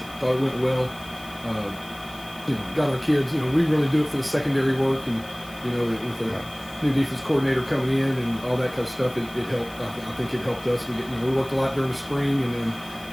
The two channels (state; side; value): noise; left; hiss, 21 dB below the sound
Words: Thought it went well. Got our kids. We really do it for the secondary work, and with the new defense coordinator coming in and all that kind of stuff, it helped. I think it helped us. We worked a lot during the spring, and then